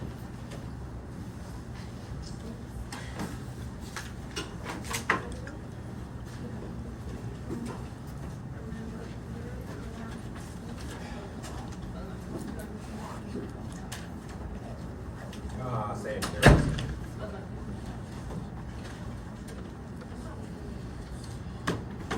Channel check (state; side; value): identical; both; correlation 1.00